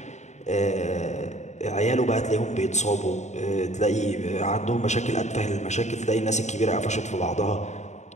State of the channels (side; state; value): right; late; 0.34 ms